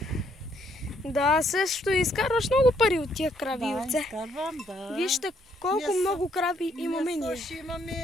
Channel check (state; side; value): normal; both; correlation 0.70